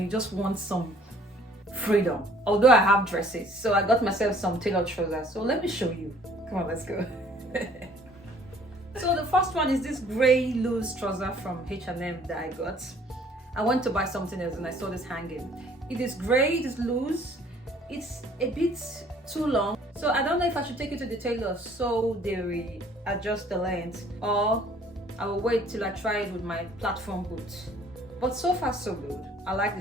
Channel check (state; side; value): normal; both; correlation 0.57